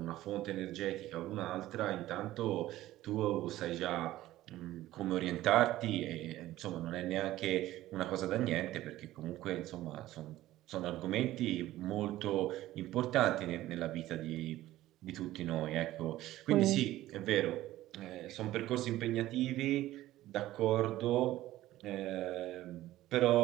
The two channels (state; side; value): quieter; left; 15.3 dB